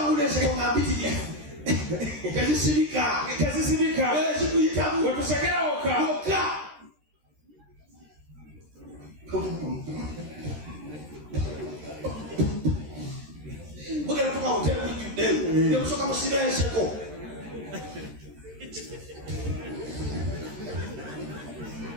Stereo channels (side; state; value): left; late; 13 ms